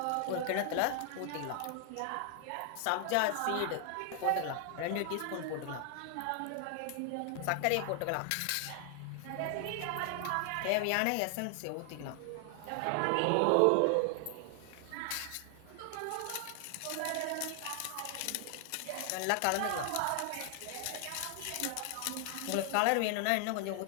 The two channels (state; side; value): different; both; correlation 0.00